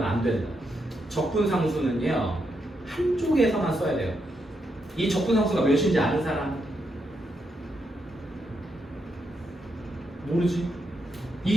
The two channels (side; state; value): both; normal; correlation 0.81